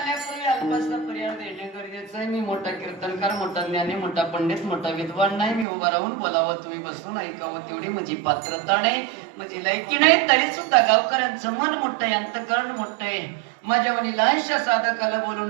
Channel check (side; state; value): left; drops out; at 5.7 s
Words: ज्ञानी मोठा पंडित मोठा विद्वान नाही, मी उभा राहून बोलावं तुम्ही बसून ऐकावं तेवढी माझी पात्रता नाही, माझी लायकी नाही, तरी सुद्धा गावकऱ्यांचं मन मोठं आहे, अंतकरण मोठं आहे. माझ्या वणी लहानशा साधकाला बोलून